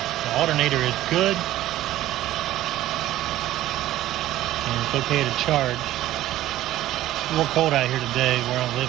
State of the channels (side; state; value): left; quieter; 14.4 dB